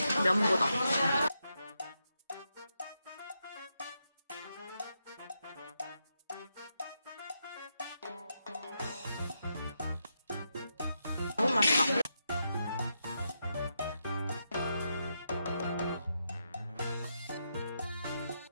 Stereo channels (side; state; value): both; inverted; correlation -0.84